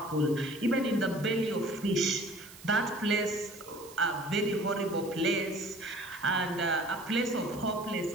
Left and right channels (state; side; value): noise; right; hiss, 19 dB below the sound